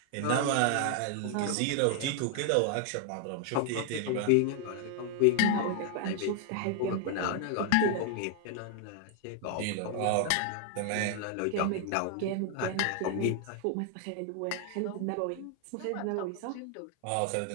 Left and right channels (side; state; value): both; different; correlation 0.00